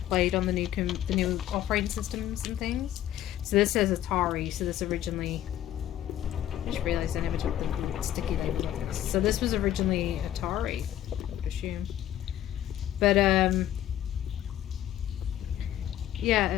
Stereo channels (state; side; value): quieter; right; 12.0 dB